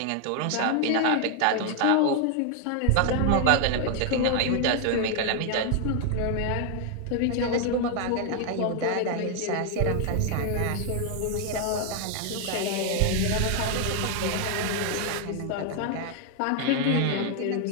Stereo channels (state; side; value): different; both; correlation 0.00